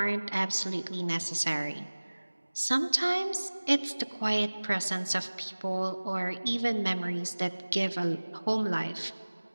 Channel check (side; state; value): both; inverted; correlation -1.00